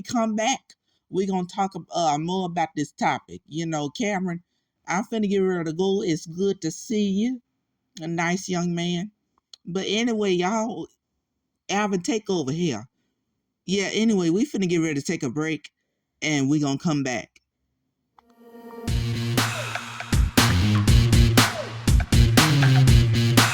come back, we're gonna talk more about this topic. You know, Kameron, I'm finna get ready to go. It's good to see you. A nice young man. But anyway, y'all, Alvin, take over here. Yeah, anyway, we finna get ready to take a break, and we're gonna come back.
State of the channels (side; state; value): both; identical; correlation 1.00